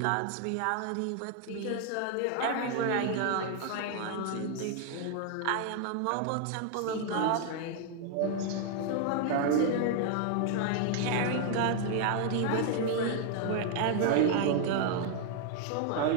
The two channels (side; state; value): both; different; correlation 0.00